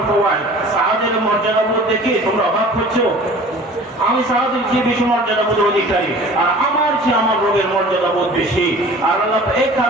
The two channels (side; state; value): both; normal; correlation 0.45